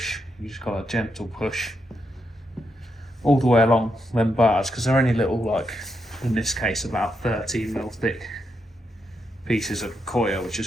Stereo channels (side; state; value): both; normal; correlation 0.82